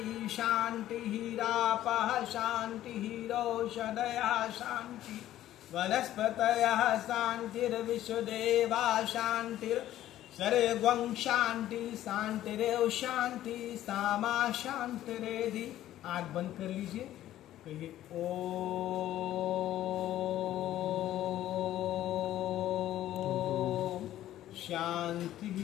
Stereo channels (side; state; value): right; quieter; 13.2 dB